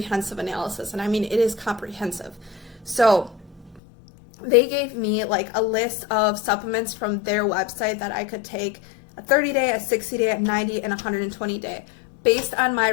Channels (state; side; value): drops out; right; at 3.8 s